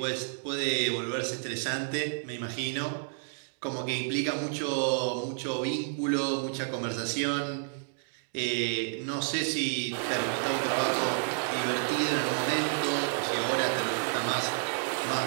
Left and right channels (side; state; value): left; silent; digital silence